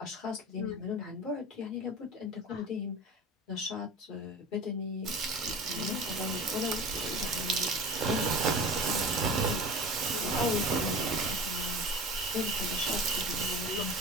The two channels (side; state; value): both; normal; correlation 0.34